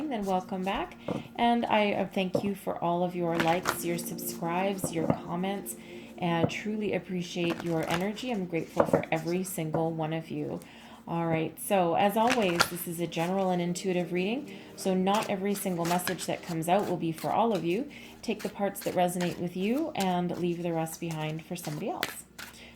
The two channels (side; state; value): both; identical; correlation 1.00